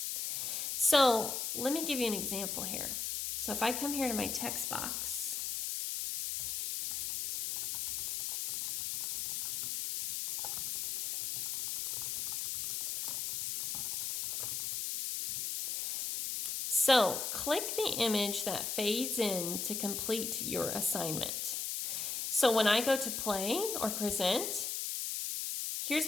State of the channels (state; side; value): noise; left; hiss, 2 dB below the sound